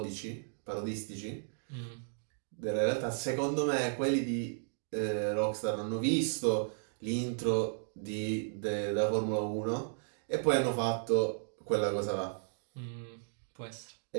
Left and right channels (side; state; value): left; silent; digital silence